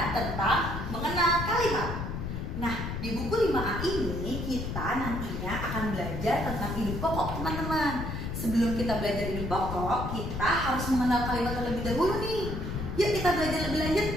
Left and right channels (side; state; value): left; noise; rumble, 4 dB below the sound